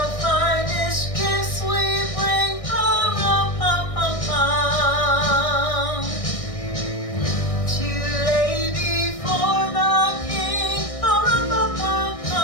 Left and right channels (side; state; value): right; late; 1.6 ms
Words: finest gifts we bring, pa-rum-pum-pum-pum.